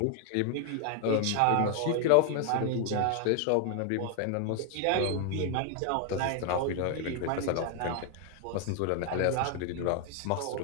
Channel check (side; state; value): both; different; correlation 0.00